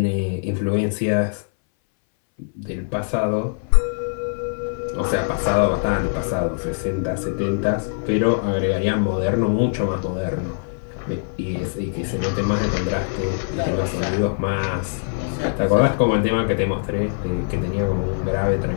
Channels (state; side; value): silent; right; 61 dB below the other